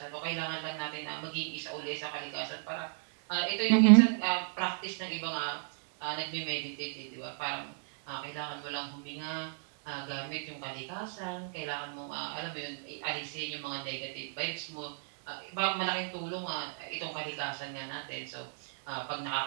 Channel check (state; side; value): silent; left; digital silence